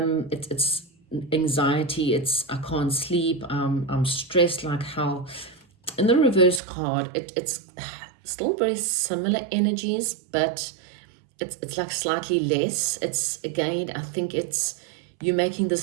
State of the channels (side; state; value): left; drops out; at 6.6 s